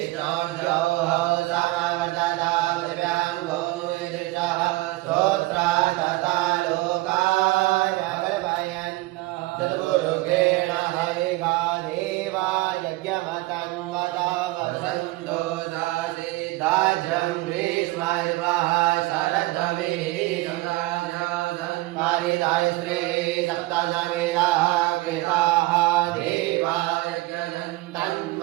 समवर्तता पृथिव्यां भूमिदृशः श्रोत्रात् तथा लोकाय कल्पयन् चतुर्मुखेण हरिगा देवा यज्ञमतं वदा वसन्तो नासीदाज्यं ग्रीष्मर्वः शरद्भवेदं पारिदाय श्री सप्तसमिदाः कृताः देवा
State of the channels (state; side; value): quieter; left; 20.2 dB